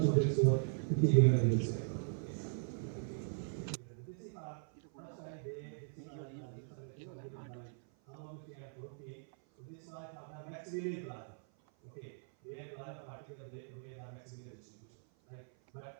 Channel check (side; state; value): left; silent; 51 dB below the other